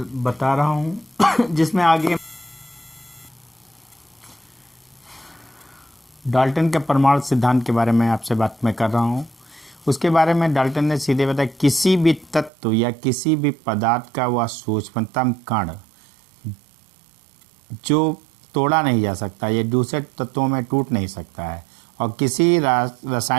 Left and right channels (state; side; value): drops out; left; at 12.5 s